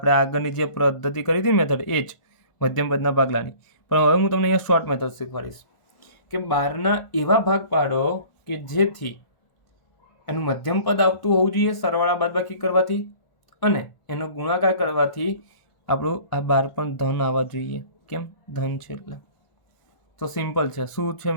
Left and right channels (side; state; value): right; late; 1.4 ms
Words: આગળની જે પદ્ધતિ કરી હતી મેથડ એ જ, મધ્યમ પદના ભાગલાની. પણ હવે હું તમને અહીંયા શોર્ટ મેથડ શીખવાડીશ કે 12ના એવા ભાગ પાડો કે જેથી એનું મધ્યમ પદ આવતું હોવું જોઈએ સરવાળા બાદબાકી કરવાથી, અને એનો ગુણાકાર કરવાથી આપણું આ 12 પણ ધન આવવા જોઈએ. કેમ? ધન છે એટલે. તો સિમ્પલ છે. શું છે